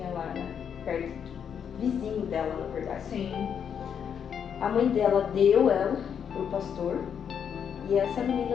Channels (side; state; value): right; quieter; 7.8 dB